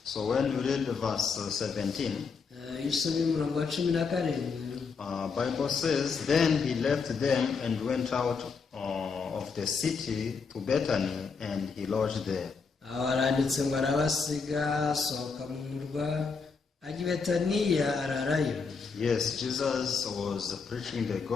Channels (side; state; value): right; quieter; 5.1 dB